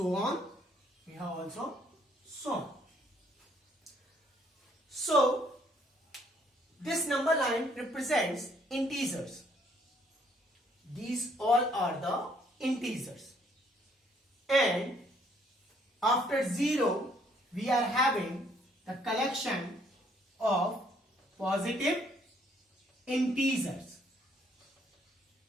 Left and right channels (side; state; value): both; normal; correlation 0.66